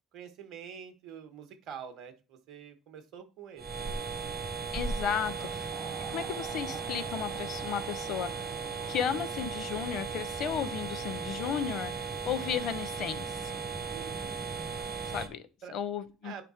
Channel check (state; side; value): normal; both; correlation 0.41